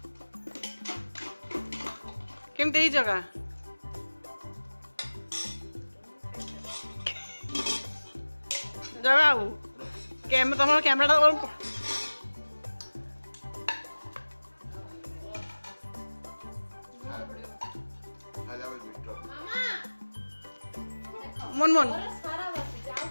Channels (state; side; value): inverted; both; correlation -1.00